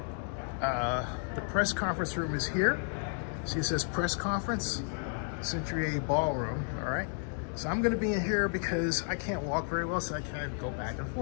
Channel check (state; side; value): silent; right; 56 dB below the other